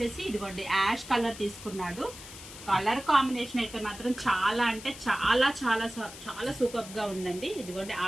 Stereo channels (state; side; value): noise; left; hiss, 14 dB below the sound